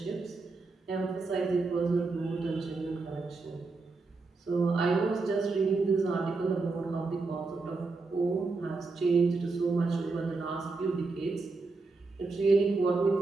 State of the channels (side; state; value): left; quieter; 3.9 dB